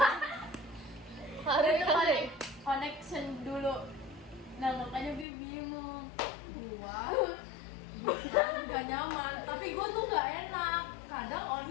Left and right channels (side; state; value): right; drops out; at 5.2 s